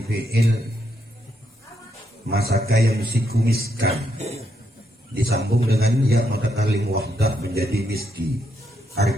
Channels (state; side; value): normal; both; correlation 0.78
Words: fi'il masaka yang misikumiskan, disambung dengan ya mutakalim wahdah menjadi miski,